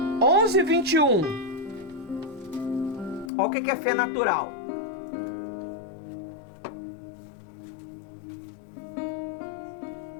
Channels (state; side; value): drops out; right; at 3.3 s